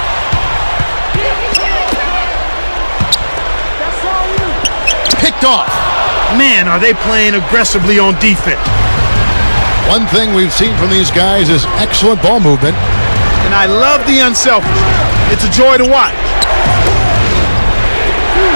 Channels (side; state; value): both; inverted; correlation -1.00